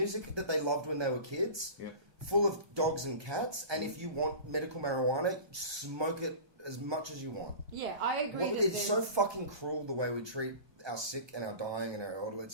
that they loved when they were kids. Yeah. Full of dogs and cats. And if you want medical marijuana, smoke it as much as you want. Yeah, I agree. It's so fucking cruel the way we treat our sick and our dying and our elderly.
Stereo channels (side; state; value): left; late; 1.2 ms